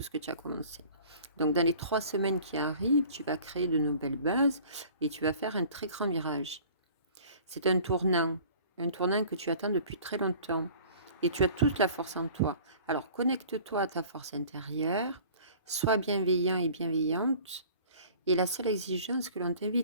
ce que tu as commencé. Donc, dans les 3 semaines qui arrivent, tu vas créer de nouvelles bases et tu vas faire un très grand virage. C'est un tournant que tu attends depuis très longtemps et tu as toute la force en toi. Alors, connecte-toi à ta force intérieure, sois bienveillant et bienveillante et la seule exigence que l'on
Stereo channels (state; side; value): inverted; both; correlation -0.48